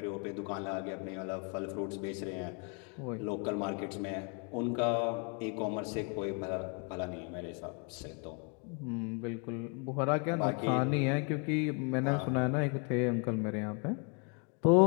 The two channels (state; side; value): quieter; right; 36.0 dB